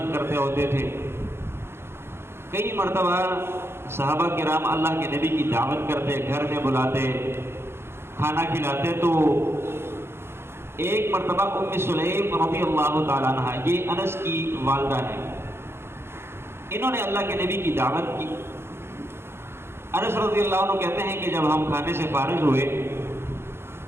کرتے ہوتے تھے۔ کئی مرتبہ صحابہ کرام اللہ کے نبی کی دعوت کرتے، گھر میں بلاتے، کھانا کھلاتے، تو ایک مرتبہ ام سلیم رضی اللہ تعالیٰ عنہ، یہ انس کی والدہ ہے، انہوں نے اللہ کے نبی کی دعوت کی۔ انس رضی اللہ عنہ کہتے ہیں کہ جب ہم کھانے سے فارغ ہوئے،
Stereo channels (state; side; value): late; left; 0.12 ms